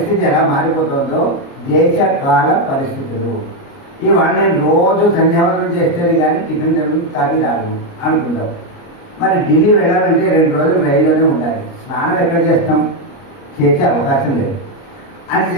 ఎలా మారిపోతుందో దేశకాల పరిస్థితులు. ఇవాళ నేను రోజు సంధ్యావందనం చేస్తేనే కానీ టిఫిన్ కాఫీ రాను అనుకుంటాం. మరి ఢిల్లీ వెళ్ళాలంటే 2 రోజులు రైల్లోనే ఉండాలి. స్నానం ఎక్కడ చేస్తాం, చేసే అవకాశం లేదు.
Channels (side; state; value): right; late; 29 ms